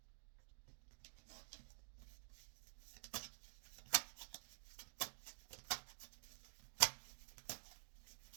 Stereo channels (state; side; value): silent; left; digital silence